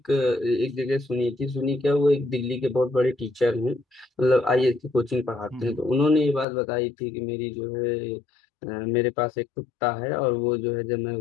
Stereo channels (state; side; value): drops out; right; at 6.5 s